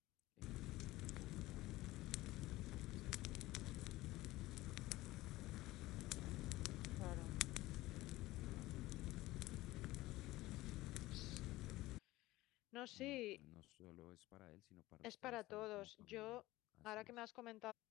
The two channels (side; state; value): right; quieter; 18.1 dB